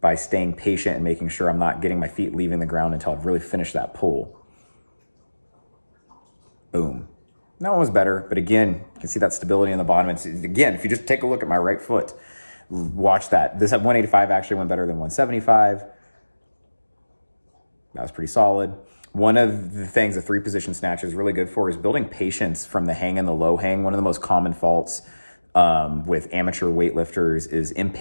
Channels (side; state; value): both; inverted; correlation -1.00